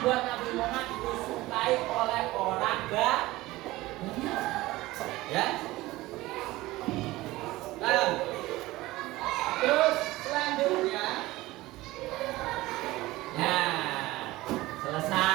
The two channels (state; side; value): quieter; left; 18.5 dB